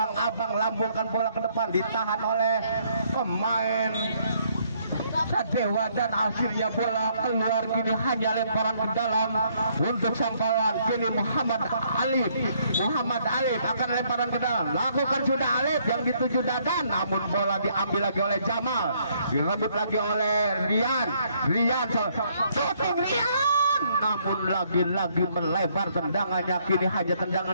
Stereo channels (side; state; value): both; inverted; correlation -0.68